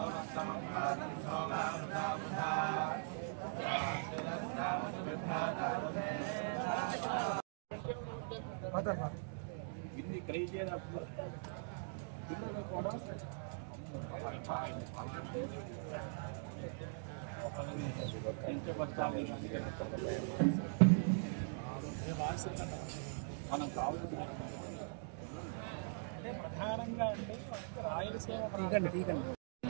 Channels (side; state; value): left; silent; digital silence